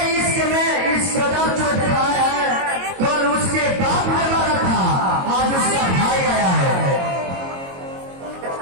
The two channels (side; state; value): left; late; 22 ms